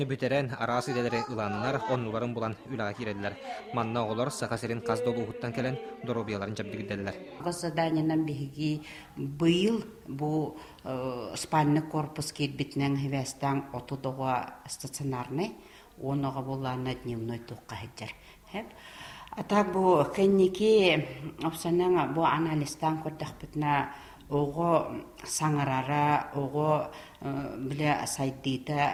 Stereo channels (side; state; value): both; identical; correlation 1.00